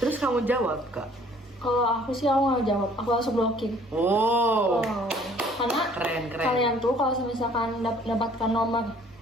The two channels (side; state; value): both; normal; correlation 0.56